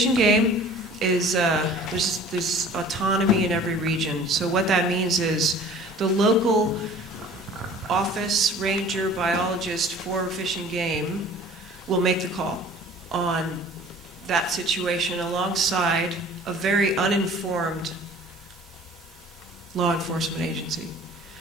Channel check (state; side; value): normal; both; correlation 0.47